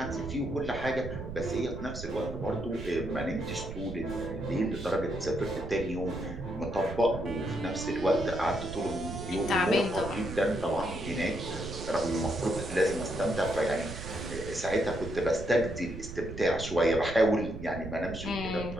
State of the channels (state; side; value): noise; right; rumble, 9 dB below the sound